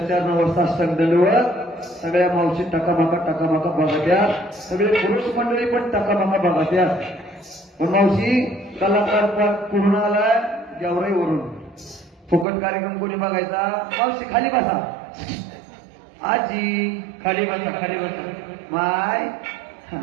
साष्टांग दंडवत सगळ्या मावशी टकामाका बघत्या, सगळे पुरुष मंडळी पण टकामाका बघत्या. पण मावशी कलाकार पूर्ण आलाय गेवराई वरून. फुकट कार्यक्रम कोणी बघायचा? मावशी खाली बसा, आजी खाली बसा माय.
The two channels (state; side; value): drops out; left; at 12.5 s